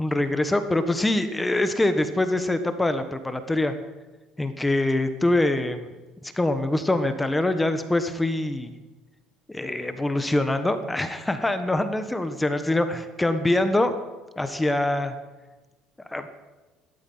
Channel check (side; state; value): both; normal; correlation 0.90